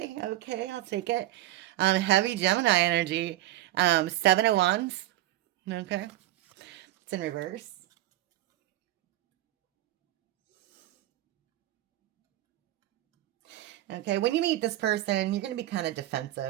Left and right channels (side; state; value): left; quieter; 14.9 dB